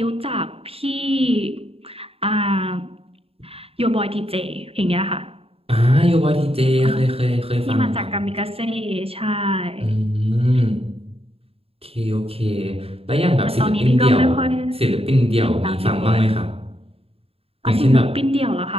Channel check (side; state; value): left; late; 0.28 ms